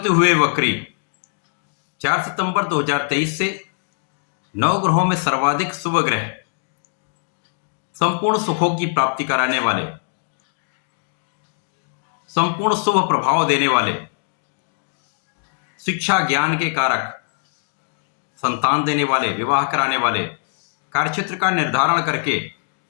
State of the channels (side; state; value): right; silent; digital silence